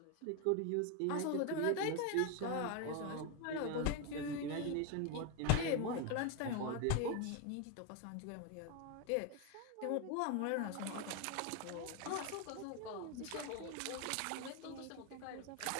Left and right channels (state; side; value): different; both; correlation 0.01